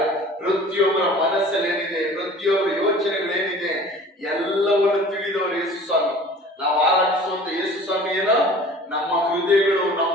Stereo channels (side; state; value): both; normal; correlation 0.45